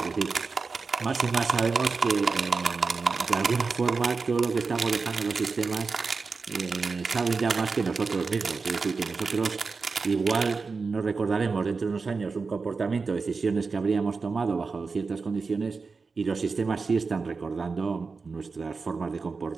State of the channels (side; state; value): left; quieter; 4.5 dB